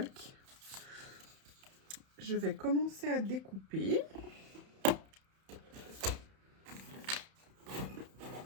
Je vais commencer à découper.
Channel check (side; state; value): left; late; 31 ms